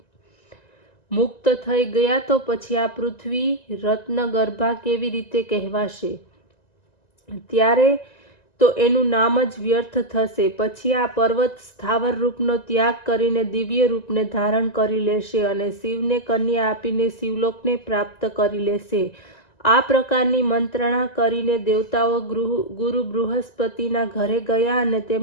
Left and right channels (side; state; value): right; late; 1.9 ms